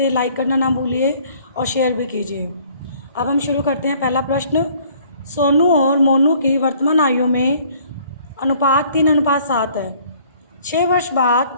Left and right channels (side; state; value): both; inverted; correlation -0.58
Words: लाइक करना ना भूलिए और शेयर भी कीजिए। अब हम शुरू करते हैं। पहला प्रश्न, सोनू और मोनू की वर्तमान आयु में अनुपात 3:7 है। 6 वर्ष